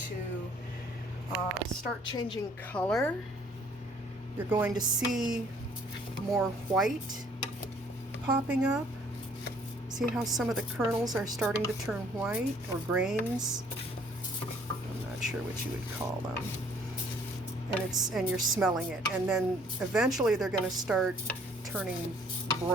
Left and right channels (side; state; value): left; noise; hum, 27 dB below the sound